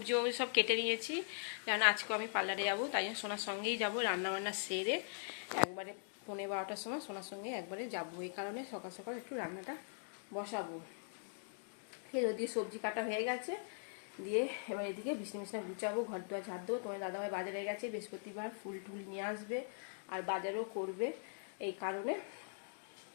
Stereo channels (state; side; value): silent; right; digital silence